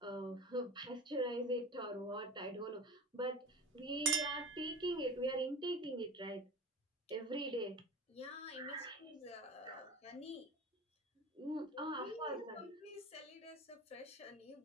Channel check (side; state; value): both; normal; correlation 0.33